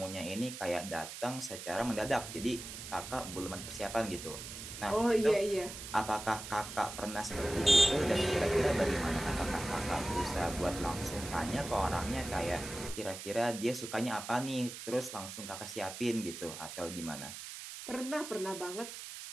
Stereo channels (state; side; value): noise; right; hiss, 10 dB below the sound